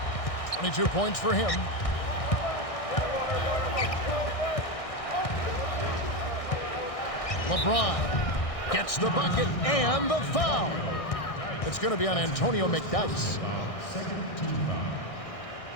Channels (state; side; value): late; right; 1.6 ms